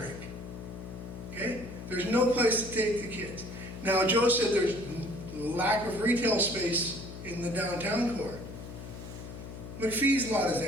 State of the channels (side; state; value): left; noise; hum, 11 dB below the sound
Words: Okay? There's no place to take the kids. Now, Joe said there's lack of retail space in the downtown core. McPhee's lot is